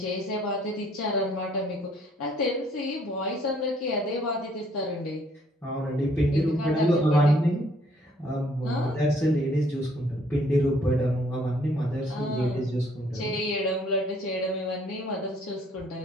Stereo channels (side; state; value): both; normal; correlation 0.63